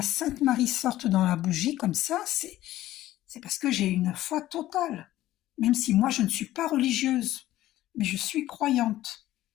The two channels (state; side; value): quieter; right; 14.7 dB